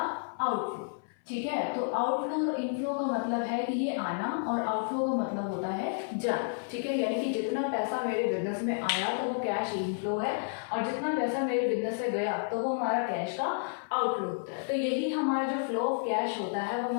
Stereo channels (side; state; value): right; silent; 56 dB below the other